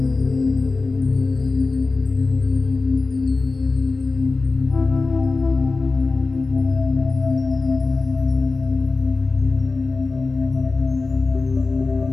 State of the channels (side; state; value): right; quieter; 3.7 dB